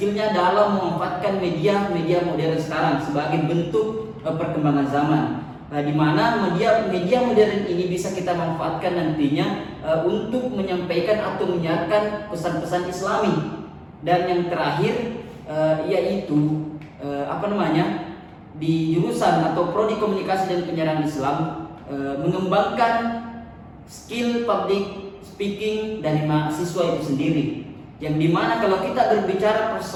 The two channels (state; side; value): identical; both; correlation 1.00